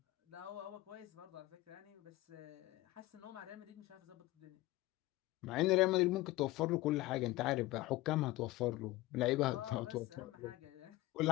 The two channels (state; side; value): quieter; right; 18.2 dB